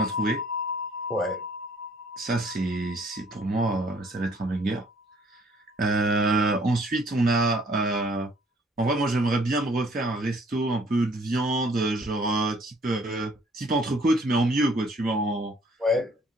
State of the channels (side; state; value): both; normal; correlation 0.60